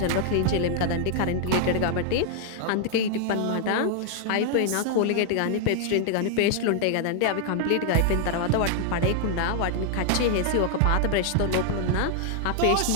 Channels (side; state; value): both; different; correlation 0.00